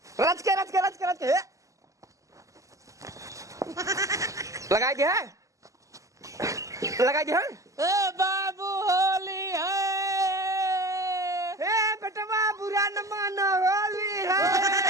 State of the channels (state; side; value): late; left; 0.16 ms